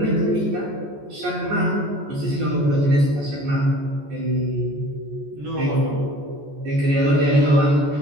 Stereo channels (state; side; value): late; left; 14 ms